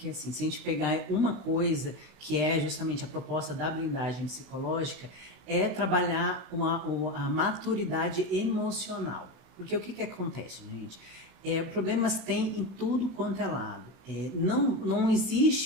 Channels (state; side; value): late; left; 16 ms